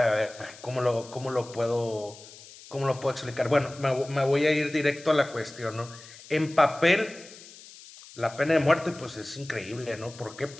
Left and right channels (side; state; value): left; noise; hiss, 19 dB below the sound